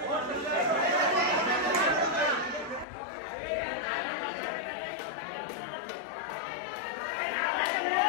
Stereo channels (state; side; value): drops out; right; at 2.9 s